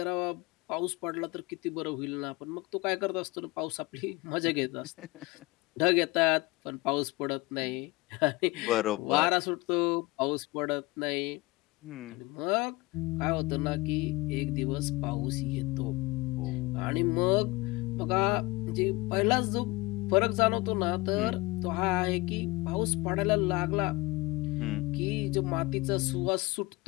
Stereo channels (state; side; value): quieter; right; 22.9 dB